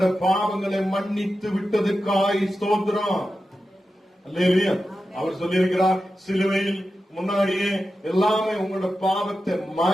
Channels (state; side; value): normal; both; correlation 0.91